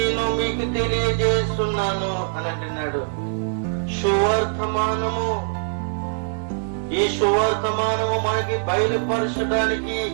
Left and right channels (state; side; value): silent; left; digital silence